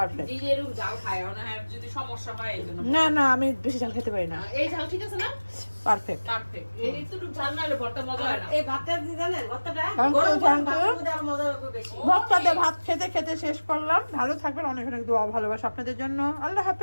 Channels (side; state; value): both; inverted; correlation -1.00